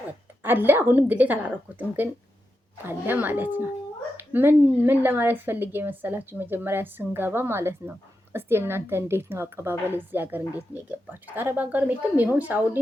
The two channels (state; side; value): normal; both; correlation 0.87